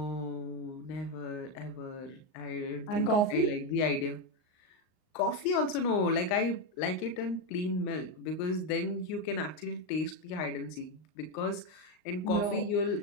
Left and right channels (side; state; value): right; late; 38 ms